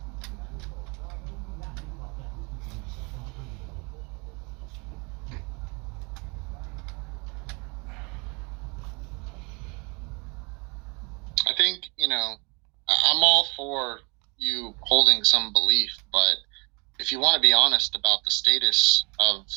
I think, I'm all for you holding some belief, but if you want to be honest about the status of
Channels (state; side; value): quieter; left; 29.8 dB